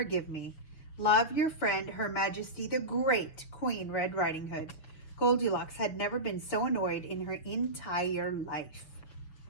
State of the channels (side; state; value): right; late; 6.7 ms